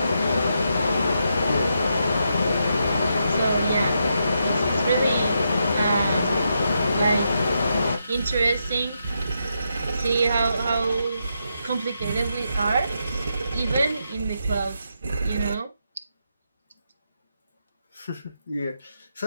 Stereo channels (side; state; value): both; inverted; correlation -0.82